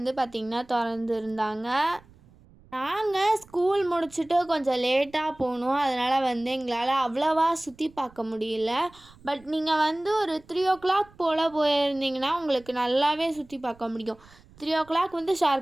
பார்த்திங்கன்னா திறந்துருந்தாங்க. நாங்கள் ஸ்கூல் முடிச்சுட்டு கொஞ்சம் லேட்டாக போனோம். அதனால் எங்களால் அவ்வளோவா சுற்றி பார்க்க முடியல. பட் நீங்கள் ஒரு 3 o'clock போல் போயிருந்தீங்கன்னா உங்களுக்கு நல்லாவே சுற்றி பார்க்க முடியும். 3 o'clock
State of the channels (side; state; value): right; noise; rumble, 26 dB below the sound